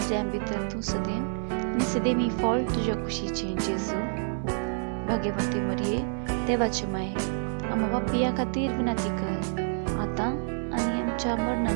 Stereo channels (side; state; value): left; silent; digital silence